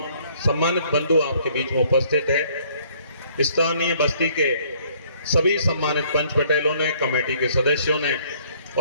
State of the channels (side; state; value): both; inverted; correlation -0.62